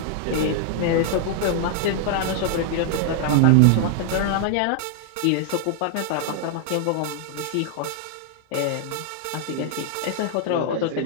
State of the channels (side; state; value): both; different; correlation 0.00